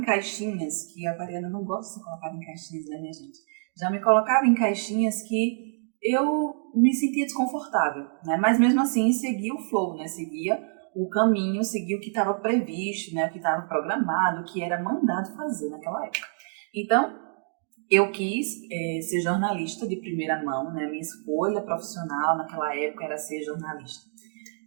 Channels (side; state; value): left; silent; digital silence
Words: que a aquariana não gosta de ser colocada em caixinhas, né, minha gente? Já me colocava em caixinhas que eu me sentia desconfortável, né? Mas mesmo assim seguia o flow, né? Seguia o caminho, seguia o que estava previsto, né? O que estava programado, o que era mandado fazer naquela época. Então, eu quis ser jornalista de primeira mão, né? Minha escolha profissional naquela época era ser jornalista.